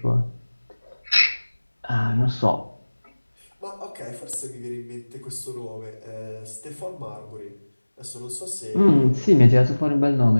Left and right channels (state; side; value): inverted; both; correlation -1.00